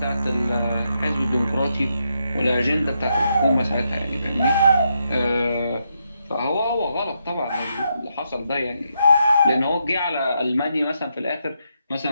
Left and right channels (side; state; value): both; inverted; correlation -0.81